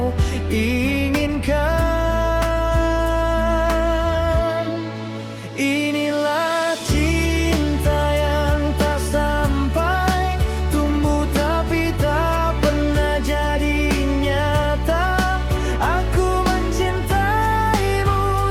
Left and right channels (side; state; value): both; identical; correlation 1.00